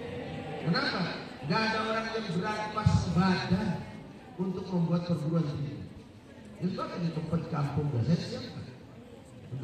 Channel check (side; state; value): both; identical; correlation 1.00